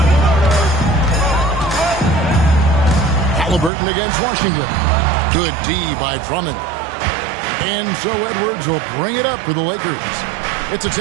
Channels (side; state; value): left; drops out; at 3.7 s